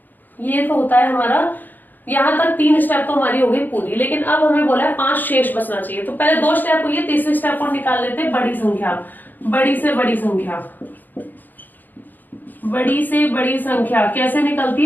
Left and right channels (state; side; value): late; right; 0.087 ms